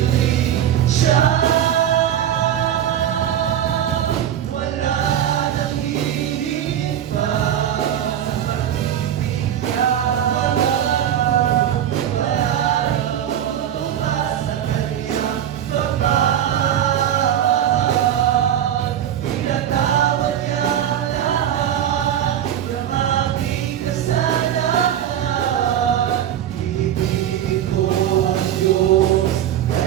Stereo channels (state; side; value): quieter; left; 10.4 dB